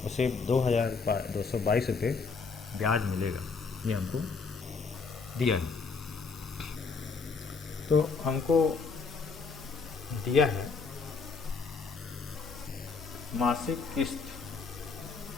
उसे 2222 रुपये ब्याज मिलेगा, ये हमको दिया है। तो हमको दिया है मासिक किस्त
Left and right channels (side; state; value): right; quieter; 4.8 dB